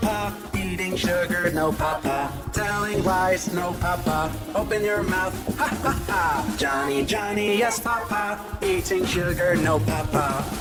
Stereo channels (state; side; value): identical; both; correlation 1.00